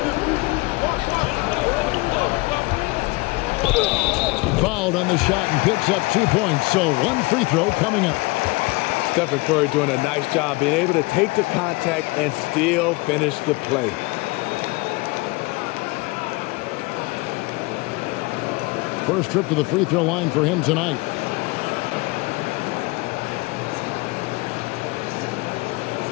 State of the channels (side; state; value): right; quieter; 24.7 dB